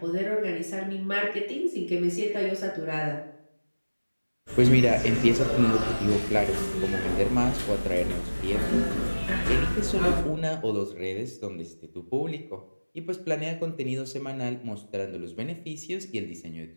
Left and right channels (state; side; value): inverted; both; correlation -1.00